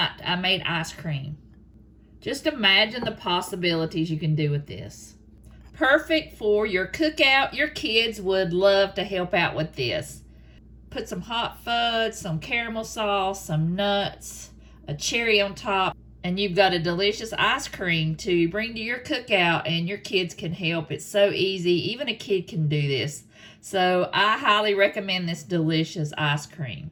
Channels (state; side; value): identical; both; correlation 1.00